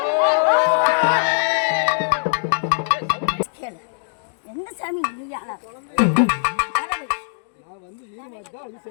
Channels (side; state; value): right; silent; digital silence